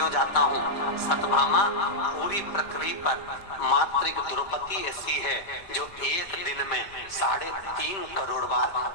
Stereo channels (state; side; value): late; right; 5.1 ms